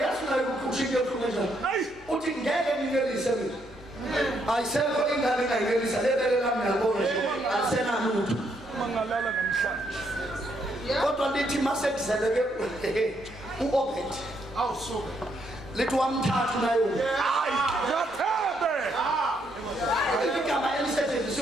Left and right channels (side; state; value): both; normal; correlation 0.74